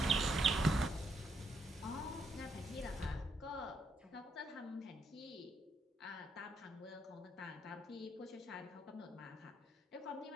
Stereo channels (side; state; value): both; normal; correlation 0.76